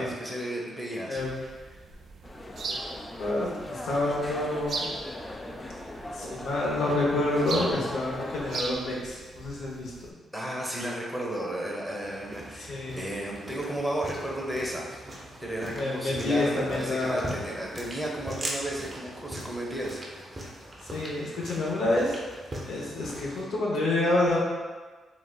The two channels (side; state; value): both; normal; correlation 0.76